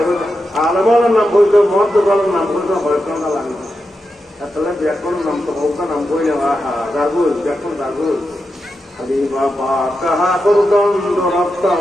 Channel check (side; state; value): both; normal; correlation 0.88